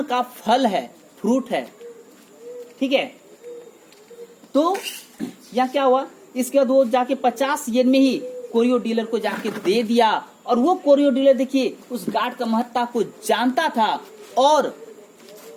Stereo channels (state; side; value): identical; both; correlation 1.00